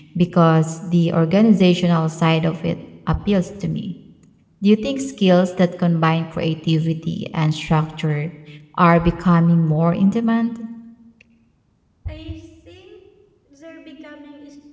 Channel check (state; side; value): identical; both; correlation 1.00